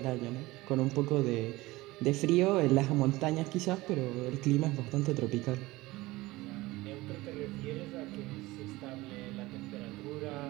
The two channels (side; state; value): left; quieter; 19.8 dB